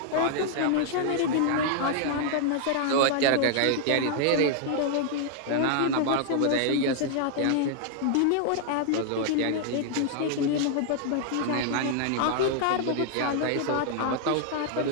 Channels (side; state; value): both; different; correlation -0.01